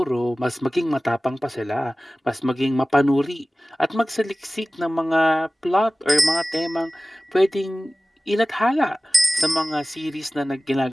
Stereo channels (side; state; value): both; normal; correlation 0.97